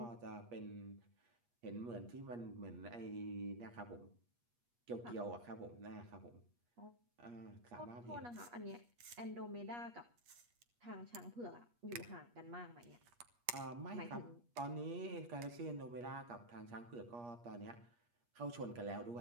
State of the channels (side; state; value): left; late; 8.4 ms